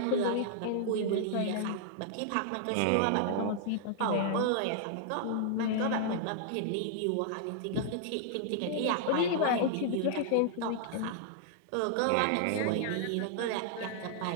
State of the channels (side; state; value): both; different; correlation -0.01